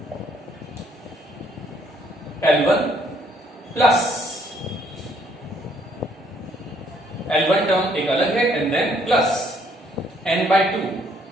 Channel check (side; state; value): both; normal; correlation 0.67